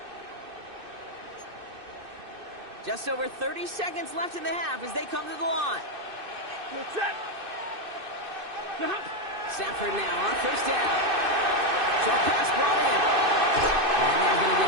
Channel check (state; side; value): late; left; 2.6 ms